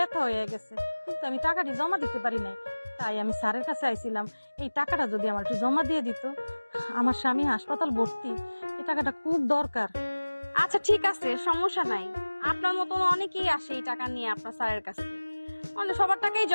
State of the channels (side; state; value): both; inverted; correlation -1.00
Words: হয়ে গেছে, কিন্তু আমি টাকাটি জমা দিতে পারি নাই। তাই আমি স্যারের কাছে আইছিলাম, এই টাকাটা যদি আমার একটু জমা দিয়ে দিত। আমার স্বামী হাসপাতাল ভর্তি, এই টাকাটা খুব দরকার। আচ্ছা ঠিক আছে, সমস্যা নাই। আপনার মতন অনেকেই আসে এই টাকা নিয়ে আপনার স্যারের কাছে, মানে সবার টাকাই